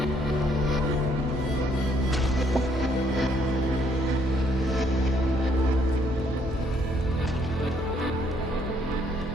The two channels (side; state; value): both; normal; correlation 0.68